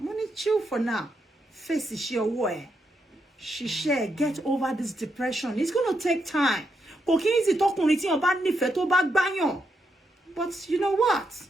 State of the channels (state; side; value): normal; both; correlation 0.81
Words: chill for now. Face is your way. She share get over this depression. It's gonna take time. But you know what?